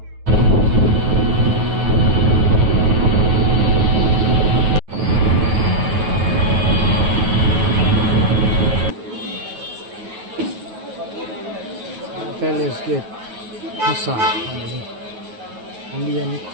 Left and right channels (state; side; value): late; left; 9.3 ms